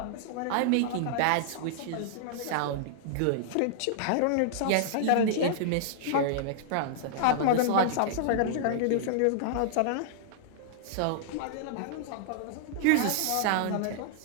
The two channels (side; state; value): both; different; correlation -0.01